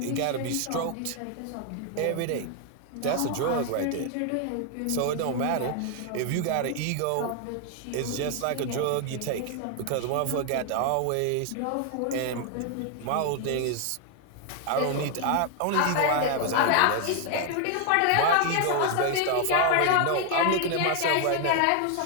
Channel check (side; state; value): both; different; correlation 0.00